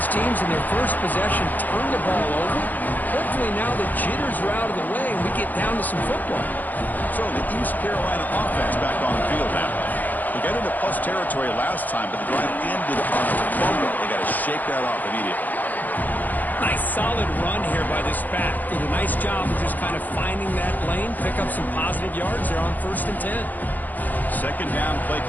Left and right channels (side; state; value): right; late; 0.083 ms